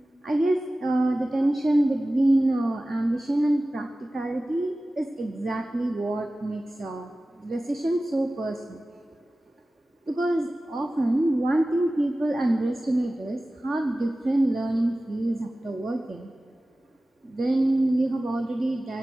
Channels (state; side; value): normal; both; correlation 0.96